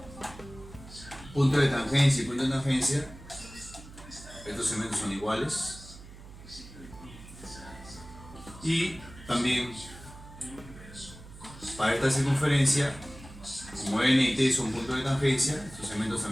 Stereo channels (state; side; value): noise; right; hum, 17 dB below the sound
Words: punto de tangencia y punto de tangencia, estos segmentos son iguales. Y también para esta circunferencia, como N y T son puntos de tangencia, estos segmentos